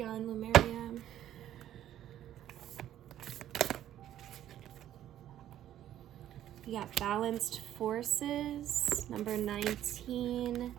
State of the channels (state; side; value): quieter; left; 11.9 dB